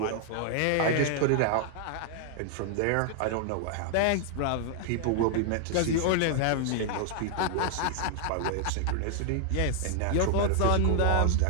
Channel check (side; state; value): both; different; correlation 0.00